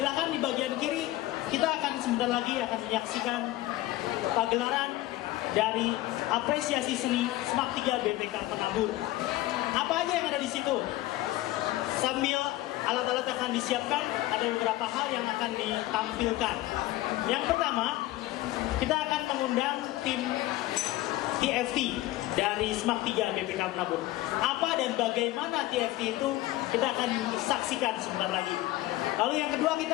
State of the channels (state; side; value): quieter; right; 16.7 dB